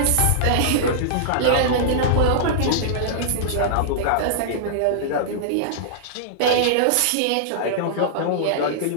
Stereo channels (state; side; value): different; both; correlation -0.02